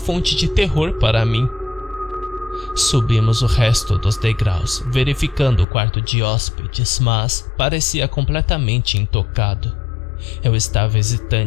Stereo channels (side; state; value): right; drops out; at 5.7 s